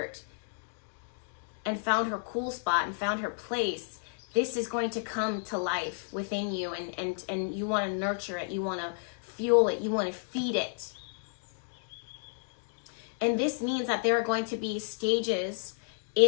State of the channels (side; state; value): right; silent; digital silence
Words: and found her cool spot and found her place, this is going to come to life within you, and you want to nurture it, you want to fuel it, you want to feed it. And this means that there are going to be stages